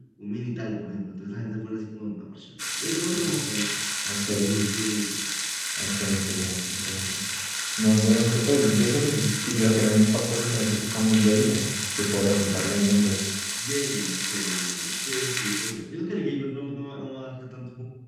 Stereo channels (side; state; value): both; identical; correlation 1.00